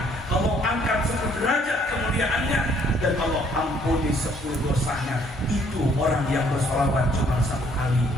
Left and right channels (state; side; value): normal; both; correlation 0.64